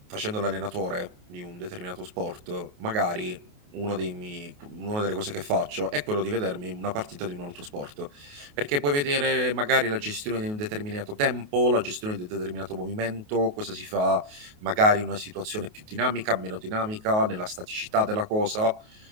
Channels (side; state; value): left; late; 28 ms